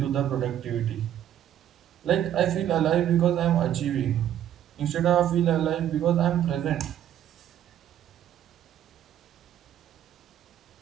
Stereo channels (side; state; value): left; quieter; 10.8 dB